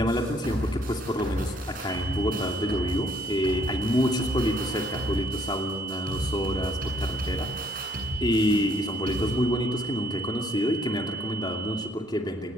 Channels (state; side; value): normal; both; correlation 0.65